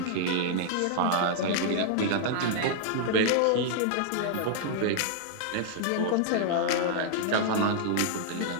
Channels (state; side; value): different; both; correlation -0.01